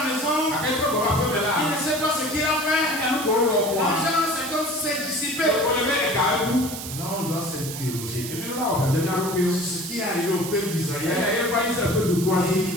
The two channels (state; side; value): noise; right; hiss, 8 dB below the sound